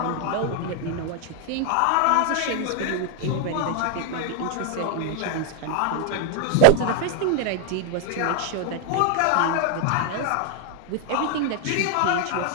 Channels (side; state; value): both; different; correlation 0.00